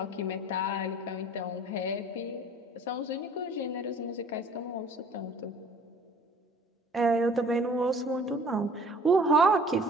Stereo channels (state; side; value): normal; both; correlation 0.51